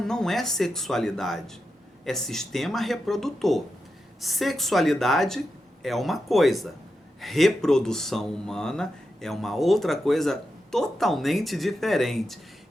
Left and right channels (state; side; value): normal; both; correlation 0.88